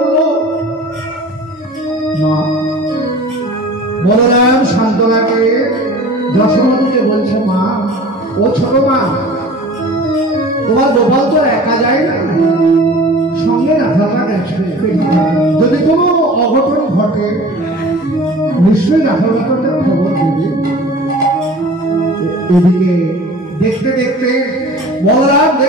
মা বলরাম শান্তনাকে যশোমতীকে বলছে, মা ও ছোট মা, তোমার গোপাল তো একা যায় না, সঙ্গে রাধাটা গেছে। যদি কোনো অঘটন ঘটে নিশ্চয়ই রাধাটাকে খবর দেবে। এদিকে দেখতে দেখতে বলরাম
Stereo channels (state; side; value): normal; both; correlation 0.42